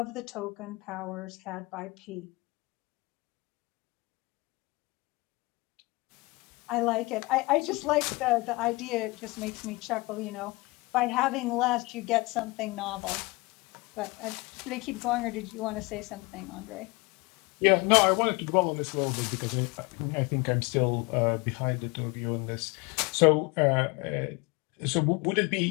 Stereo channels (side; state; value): right; quieter; 24.8 dB